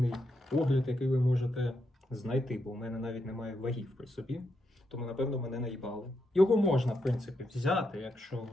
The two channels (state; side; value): normal; both; correlation 0.82